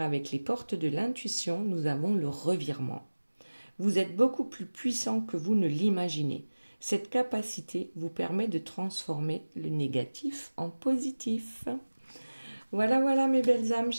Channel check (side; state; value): both; inverted; correlation -1.00